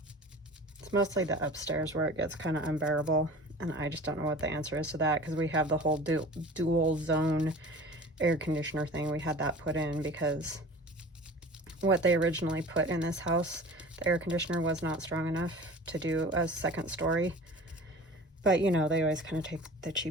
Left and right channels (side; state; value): both; normal; correlation 0.40